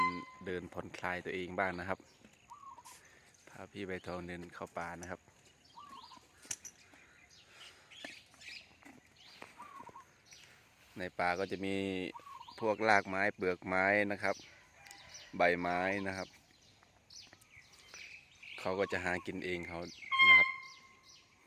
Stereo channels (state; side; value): identical; both; correlation 1.00